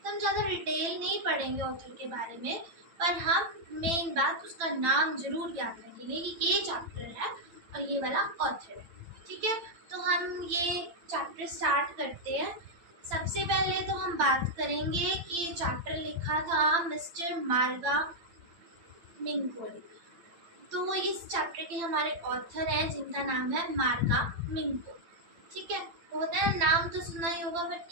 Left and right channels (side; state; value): left; late; 8.9 ms